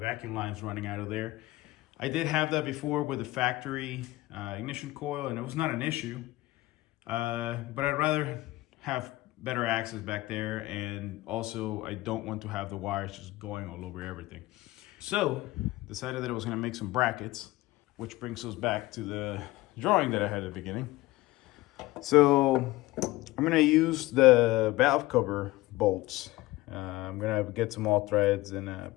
lines running out of there. I did have that before with the factory ignition coil, and it was not an issue. But I'd rather have better access back there, and also I don't want to have the wires just going all over everything. So decided that I was going to make some brackets, which brings us back to the drawing that I had at the beginning. So I'm going to use the valve cover bolts. I'm going to get some all threads and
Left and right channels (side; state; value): right; quieter; 18.7 dB